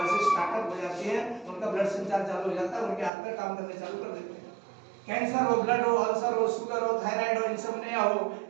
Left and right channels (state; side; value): drops out; left; at 3.1 s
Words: से स्टार्टअप हो जाती है, उनका ब्लड संचार चालू हो जाता है, उनके हाथ पैर काम करने चालू कर देते हैं। कैंसर हो, ब्लड हो, अल्सर हो, शुगर हो, थायराइड हो, इंसोम्निया हो,